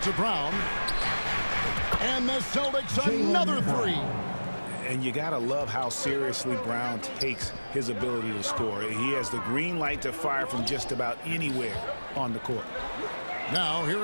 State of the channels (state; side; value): inverted; both; correlation -1.00